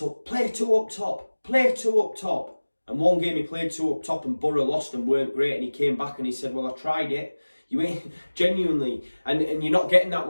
play two up top, and one game he played two up top and Borough lost and weren't great, and he came back and he said, well, I tried it. You ain't genuinely, and you're not getting that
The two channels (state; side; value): inverted; both; correlation -1.00